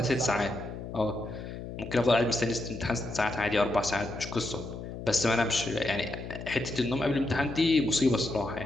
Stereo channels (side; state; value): left; noise; hum, 9 dB below the sound